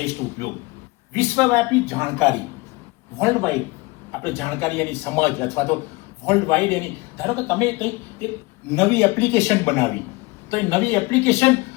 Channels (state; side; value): quieter; right; 23.9 dB